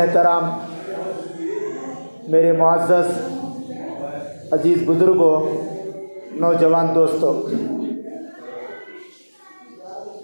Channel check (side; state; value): both; inverted; correlation -1.00